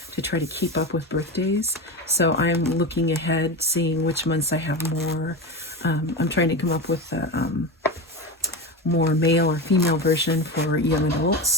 to try to keep up with birthdays. So I'm looking ahead, seeing which months I have more. I'm trying to come up with a more male or female version for young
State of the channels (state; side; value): normal; both; correlation 0.22